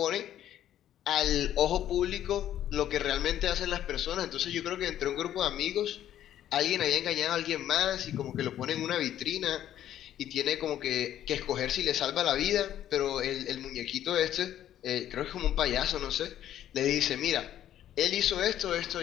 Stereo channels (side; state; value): right; quieter; 11.5 dB